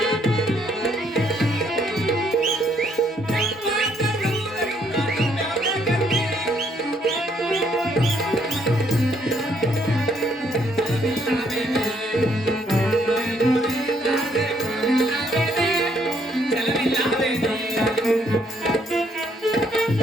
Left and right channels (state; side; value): normal; both; correlation 0.69